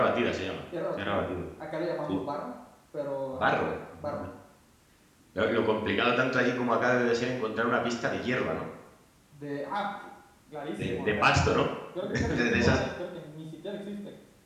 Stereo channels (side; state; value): both; identical; correlation 1.00